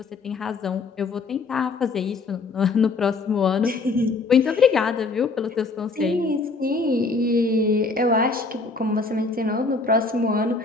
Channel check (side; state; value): right; quieter; 4.0 dB